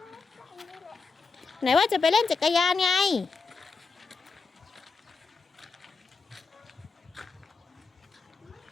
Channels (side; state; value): right; quieter; 4.5 dB